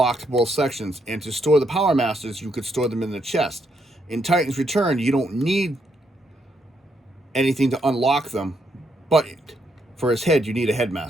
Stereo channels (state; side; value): normal; both; correlation 0.76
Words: both sections. And to store the Power Masters, you could store them in the chest. In Titan's Return, you don't need anything to unlock them, but for his head, you need a